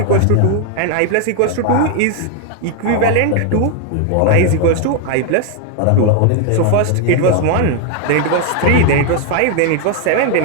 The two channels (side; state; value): both; different; correlation 0.01